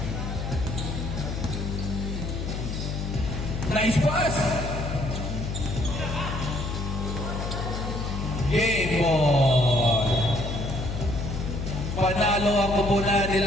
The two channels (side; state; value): left; noise; hum, 4 dB below the sound